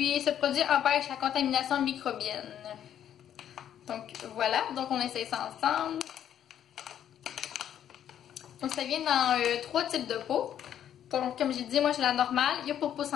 ce produit empêche la contamination microbienne. Donc, voilà. Donc, on essaye ça ensemble. Donc, ça vient dans 3 types de peau. Donc, comme j'ai dit, moi, j'ai la normale. Il y a pour peau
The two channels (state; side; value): quieter; right; 10.1 dB